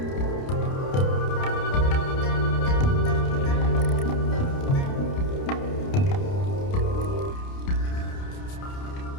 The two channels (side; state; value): right; late; 30 ms